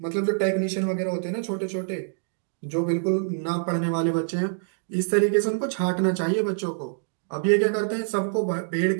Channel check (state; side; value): silent; left; digital silence